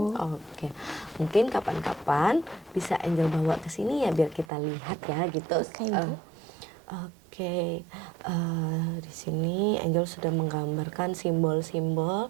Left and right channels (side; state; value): left; drops out; at 4.5 s